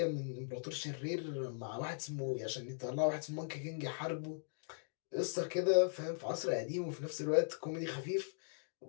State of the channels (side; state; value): right; silent; digital silence